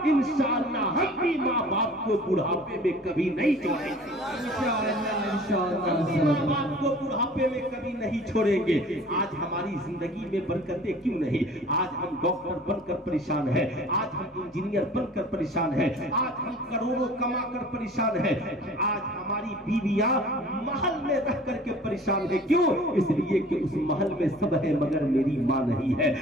इंशाअल्लाह हम भी माँ बाप को बुढ़ापे में कभी नहीं छोड़ेंगे, माँ बाप को बुढ़ापे में कभी नहीं छोड़ेंगे। आज हमारी जिंदगी में बरकतें क्यों नहीं? आज हम डॉक्टर बनकर परेशान है, आज हम इंजीनियर बनकर परेशान है, आज हम करोड़ों कमा कर परेशान है, आज हमारी बीवियां महल में रह करके परेशान है। क्यों? इसलिए कि उस महल में सब है मगर मेरी माँ नहीं है।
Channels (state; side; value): normal; both; correlation 0.47